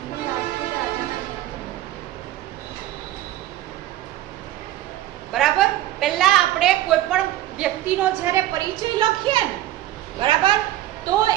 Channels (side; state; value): left; quieter; 14.1 dB